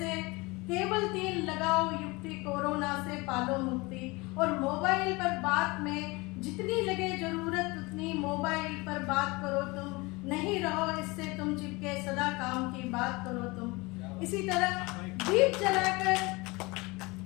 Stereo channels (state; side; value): quieter; right; 24.6 dB